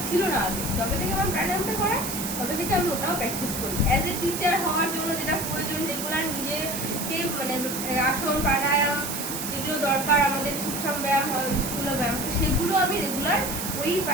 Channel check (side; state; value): right; noise; hiss, 5 dB below the sound